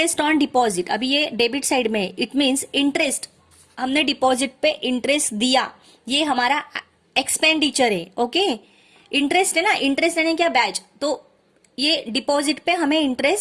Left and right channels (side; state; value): both; identical; correlation 1.00